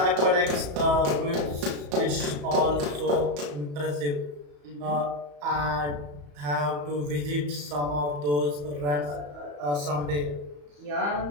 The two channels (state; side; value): late; left; 34 ms